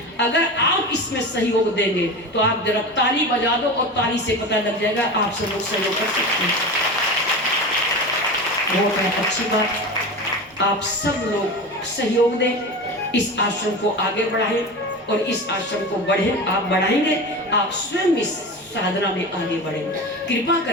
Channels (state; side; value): normal; both; correlation 0.28